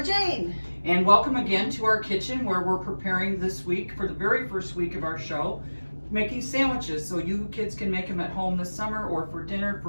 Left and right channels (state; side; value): inverted; both; correlation -1.00